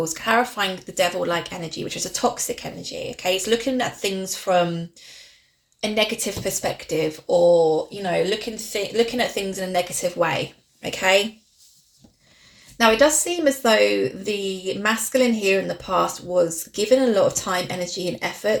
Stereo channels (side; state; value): both; identical; correlation 1.00